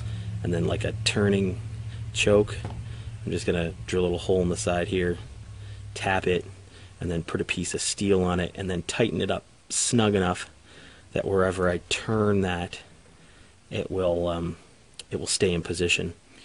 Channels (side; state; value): both; identical; correlation 1.00